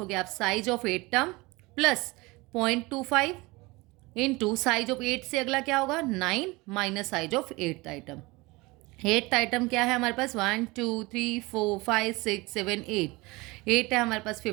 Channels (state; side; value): quieter; left; 23.4 dB